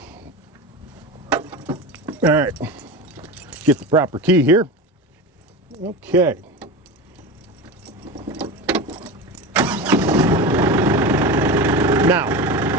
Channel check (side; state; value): both; normal; correlation 0.26